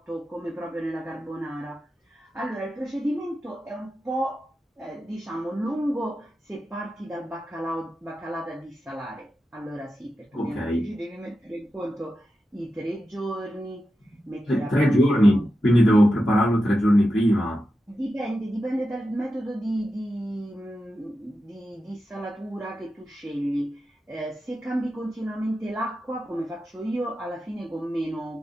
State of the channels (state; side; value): normal; both; correlation 0.90